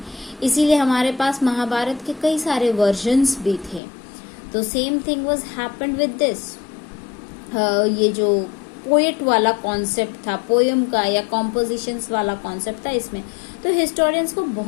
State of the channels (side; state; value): right; drops out; at 3.8 s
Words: इसीलिए हमारे पास महाभारत के कई सारे वर्जन्स भी थे। तो same thing was happened with this. ये जो पोएट वाला कॉन्सेप्ट था, पोयम का या कॉम्पोजिशंस वाला कॉन्सेप्ट था, इसमें तो हिस्टोरियंस को